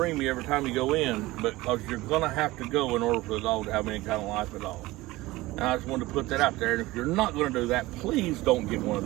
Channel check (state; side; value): quieter; left; 19.2 dB